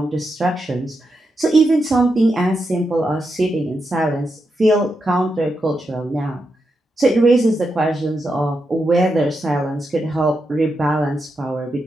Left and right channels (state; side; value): normal; both; correlation 0.86